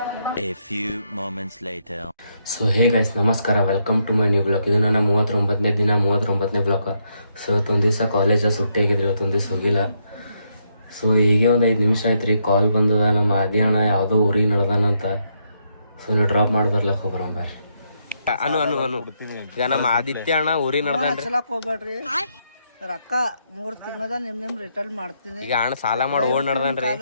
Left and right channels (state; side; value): inverted; both; correlation -0.77